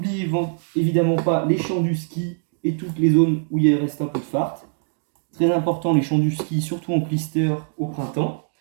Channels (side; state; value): left; silent; digital silence